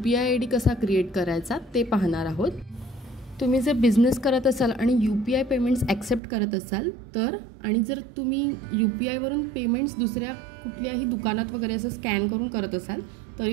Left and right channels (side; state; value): left; drops out; at 6.2 s